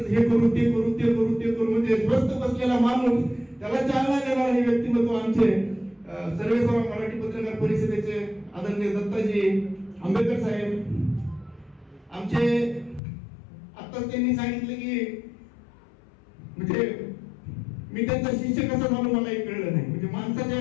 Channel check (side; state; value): right; drops out; at 13.0 s